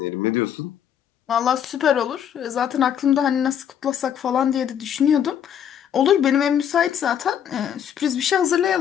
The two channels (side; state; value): right; quieter; 9.1 dB